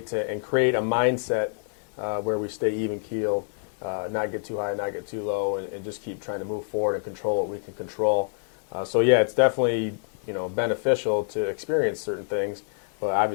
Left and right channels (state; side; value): silent; right; digital silence